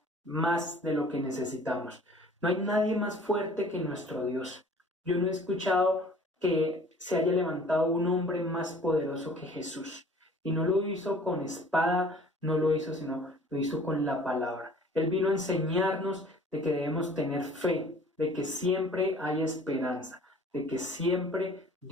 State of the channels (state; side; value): normal; both; correlation 0.50